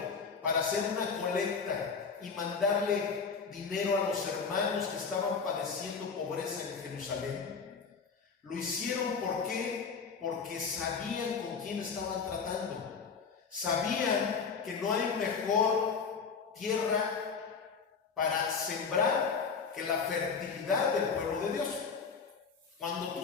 para hacer una colecta y mandarle dinero a los hermanos que estaban padeciendo pobreza en Jerusalén, lo hicieron ¿por qué? Porque sabían con quién estaban tratando. Sabían que no hay mejor tierra para sembrar que la fertilidad del pueblo de Dios. Cuando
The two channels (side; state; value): right; quieter; 5.5 dB